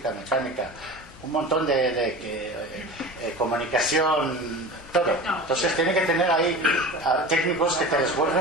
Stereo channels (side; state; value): both; normal; correlation 0.33